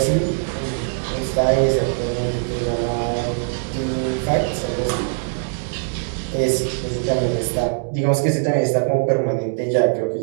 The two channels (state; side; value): silent; left; digital silence